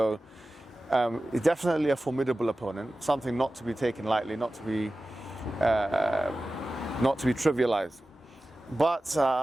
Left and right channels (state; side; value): normal; both; correlation 0.95